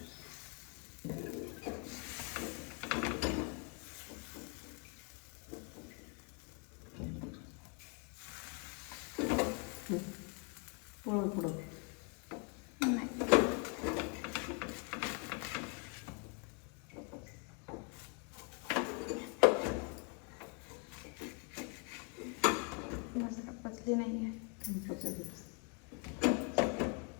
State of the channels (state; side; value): quieter; right; 34.9 dB